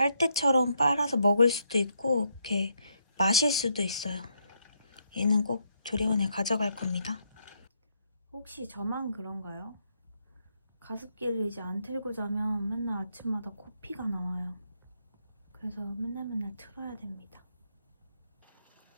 빨아서 먹을 수도 있고 이렇게 마실 수도 있어요. 얘는 꼭 조리원에 가져갈 겁니다. 혹시 저만 그런가요? 가습기를 이제 안 틀고 자면 맨날 아침마다 코피가 나와요. 그래서 맨날 틀어야 됩니다.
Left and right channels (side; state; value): both; inverted; correlation -0.76